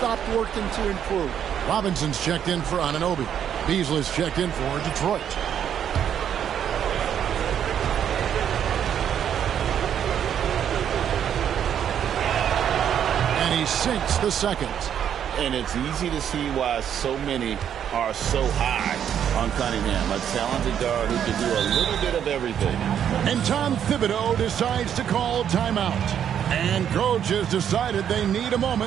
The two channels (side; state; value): left; quieter; 9.2 dB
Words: working to improve. Robinson's checked in for Anunoby. Beasley's checked in for Detroit. And he sinks the second. And it's easy to see why so many are so high on Cunningham, a talented guard who can do a little bit of everything. And Tom Thibodeau decides to call timeout. And coach has decided they need a